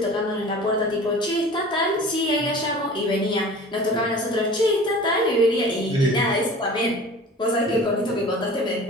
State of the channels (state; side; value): normal; both; correlation 0.41